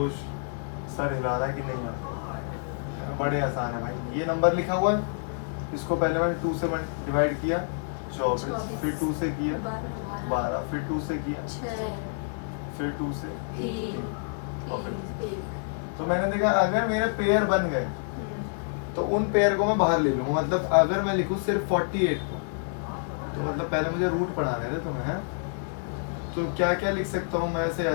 सर हिला रहा है कि नहीं आता। बड़े आसान है भाई। ये नंबर लिखा हुआ है, इसको पहले मैंने 2 से डिवाइड किया 24, फिर 2 से किया 12, फिर 2 से किया, फिर 2 से 3, और फिर तो मैंने देखा अगर मेरे पेयर बन गए तो उन पेयर को मैं बाहर ले लूंगा। मतलब अगर मैं लिखूं सिर्फ 48 को, तो मतलब पहले मुझे रूट पढ़ाने थे तुम्हें, है? तो क्या क्या लिख सकता हूँ मैं?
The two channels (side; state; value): right; silent; digital silence